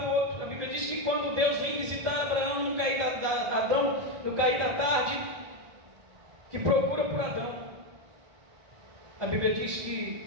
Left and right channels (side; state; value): left; late; 1.8 ms